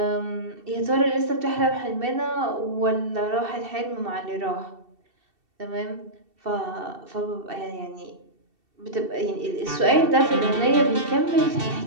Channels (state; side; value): late; left; 2.7 ms